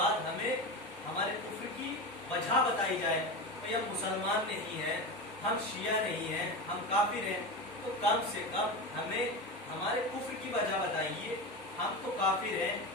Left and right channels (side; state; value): both; normal; correlation 0.23